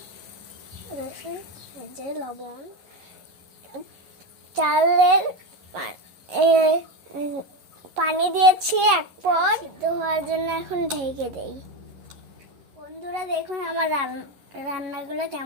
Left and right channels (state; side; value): late; left; 11 ms